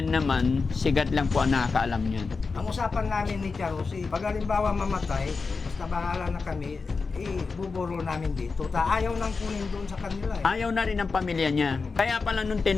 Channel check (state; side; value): quieter; right; 4.5 dB